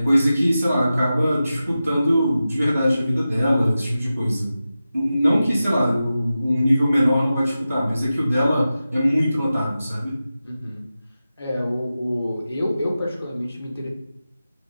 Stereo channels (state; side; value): inverted; both; correlation -0.93